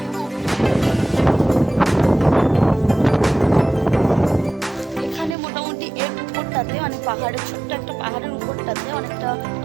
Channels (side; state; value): left; drops out; at 5.4 s